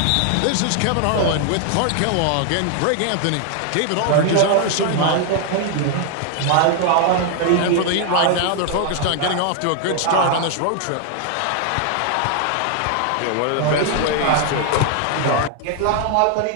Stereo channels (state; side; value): different; both; correlation 0.00